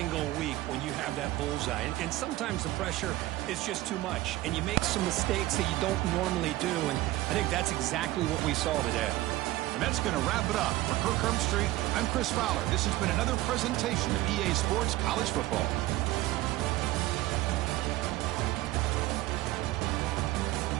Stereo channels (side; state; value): left; quieter; 17.2 dB